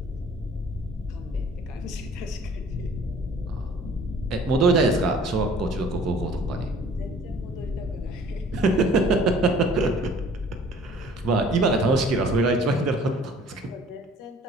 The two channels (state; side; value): normal; both; correlation 0.52